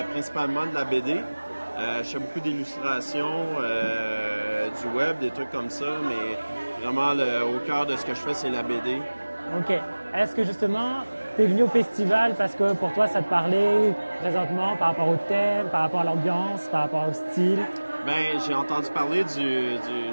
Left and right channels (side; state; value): both; inverted; correlation -1.00